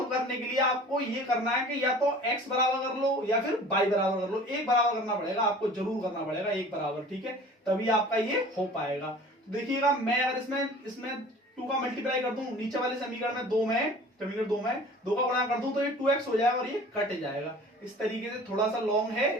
करने के लिए आपको ये करना है कि या तो x बराबर कर लो या फिर y बराबर कर लो, एक बराबर करना पड़ेगा, आपको जरूर करना पड़ेगा एक बराबर, ठीक है, तभी आपका ये हो पाएगा। तो देखिएगा मैं अगर इसमें 2 का मल्टीप्लाई कर दूं, नीचे वाले समीकरण में 2 में 2 का गुणा कर दूं तो ये 2x हो जाएगा और ये कट जाएगा। इस तरीके से थोड़ा सा लॉन्ग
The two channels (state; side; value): normal; both; correlation 0.44